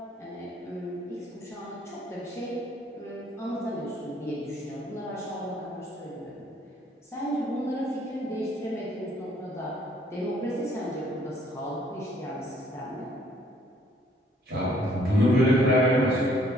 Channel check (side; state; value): both; normal; correlation 0.63